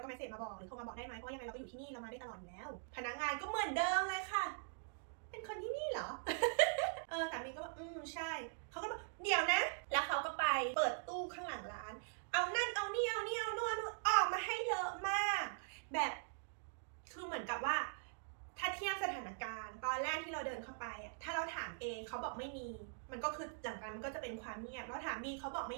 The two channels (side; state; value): left; silent; digital silence